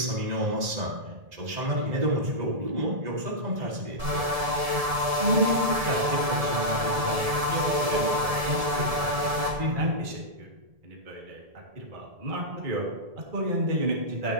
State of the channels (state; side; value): late; left; 1.7 ms